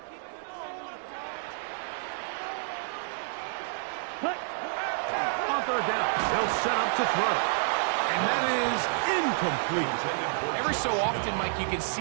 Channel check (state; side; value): silent; left; 58 dB below the other